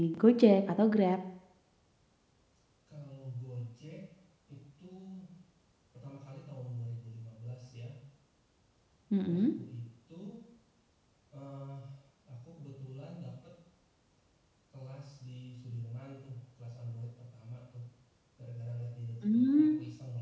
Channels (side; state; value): both; identical; correlation 1.00